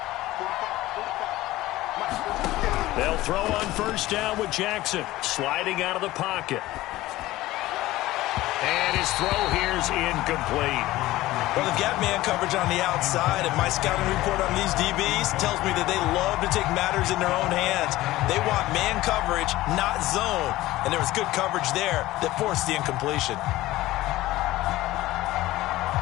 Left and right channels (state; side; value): quieter; right; 17.0 dB